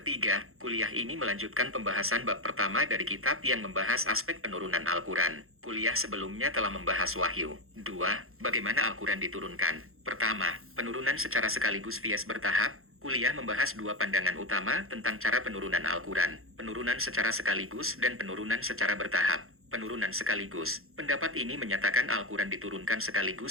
kuliah ini melanjutkan pembahasan bab pertama dari kitab yang membahas aspek penurunan Al-Quran. Kuliah sebelumnya telah membahas wahyu. 2. Bagaimana Al-Quran diturunkan? Pertama, penurunan secara sekaligus via bertahap. Kuliah membahas dua pandangan utama tentang cara penurunan Al-Quran, penurunan secara sekaligus dan penurunan secara bertahap. Penurunan sekaligus. Pendapat ini menyatakan Al-Quran diturunkan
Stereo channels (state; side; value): late; left; 0.62 ms